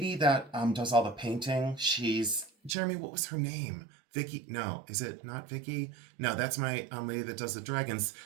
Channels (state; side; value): drops out; left; at 2.8 s